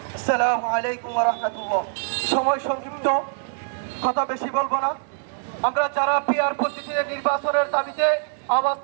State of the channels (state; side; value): silent; left; 63 dB below the other